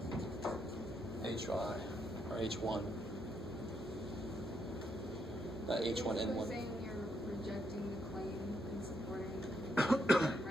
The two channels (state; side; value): normal; both; correlation 0.78